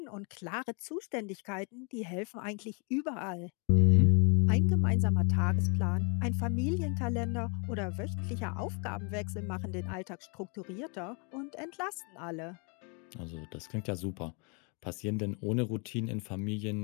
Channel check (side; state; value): right; quieter; 35.5 dB